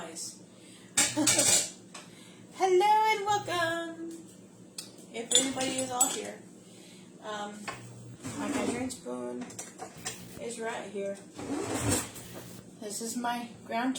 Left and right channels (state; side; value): identical; both; correlation 1.00